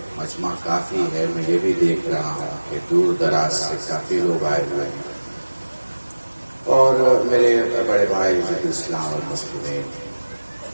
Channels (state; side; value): inverted; both; correlation -1.00